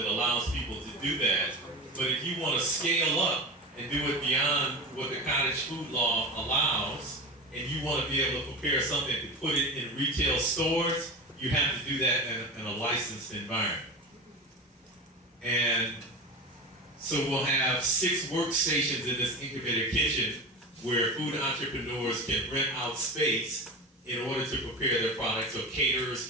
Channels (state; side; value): normal; both; correlation 0.27